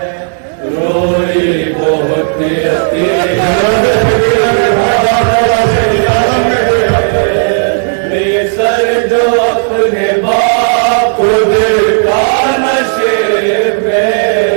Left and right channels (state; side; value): silent; left; digital silence